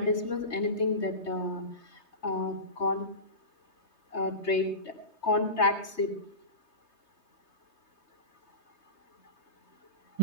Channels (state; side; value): late; right; 3.2 ms